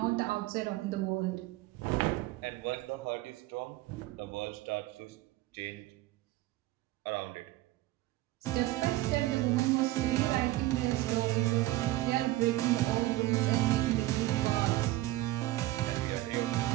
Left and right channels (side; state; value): left; quieter; 17.0 dB